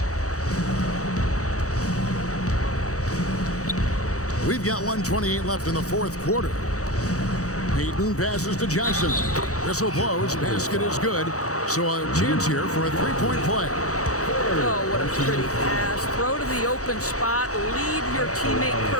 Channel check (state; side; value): late; right; 0.65 ms